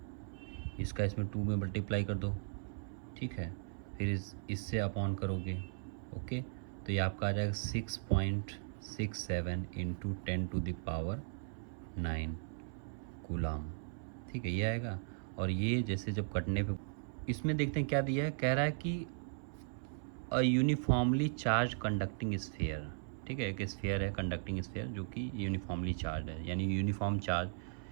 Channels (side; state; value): left; silent; 53 dB below the other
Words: इसका इसमें 2 में मल्टीप्लाई कर दो, ठीक है, फिर इससे अपॉन करोगे, ओके। तो ये आपका आ जाएगा 6.67 इंटू 10⁻9 कूलम, ठीक है, ये आएगा। और ये जैसे जब कटने पे, इसमें देखते हैं क्या दिया है, कह रहा है कि अ यूनिफॉर्मली चार्ज कंडक्टिंग स्फीयर, ठीक है, एक स्फीयर है कंडक्टिंग स्फीयर जो कि यूनिफॉर्मली चार्ज है, यानी यूनिफॉर्म चार्ज